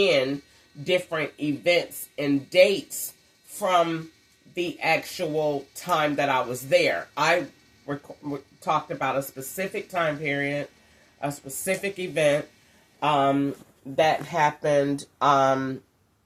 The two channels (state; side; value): identical; both; correlation 1.00